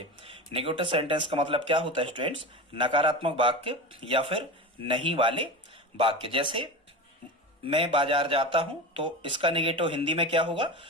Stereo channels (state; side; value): normal; both; correlation 0.26